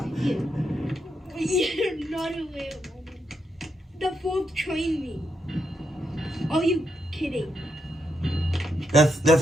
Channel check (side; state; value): both; normal; correlation 0.81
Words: not a whale woman. The fourth trained me. Are you kidding? That's